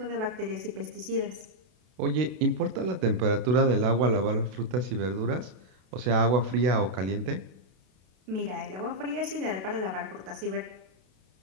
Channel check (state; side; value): late; left; 32 ms